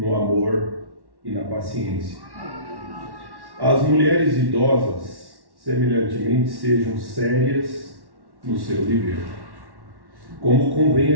amor e na paciência. As mulheres idosas semelhantemente sejam sérias no seu dever, como convém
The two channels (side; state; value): left; late; 1.1 ms